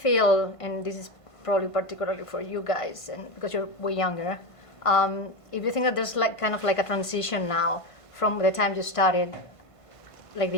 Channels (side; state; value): right; late; 1.5 ms